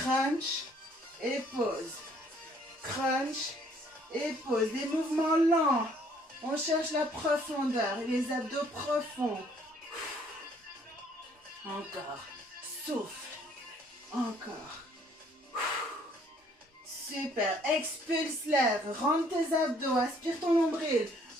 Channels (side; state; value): both; normal; correlation 0.62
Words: et pause. Crunch et pause. Des mouvements lents. On cherche la profondeur. Les abdos profonds. Encore. Souffle. Encore. Super. Expulse l'air. Rentre tes abdos. Aspire ton nombril.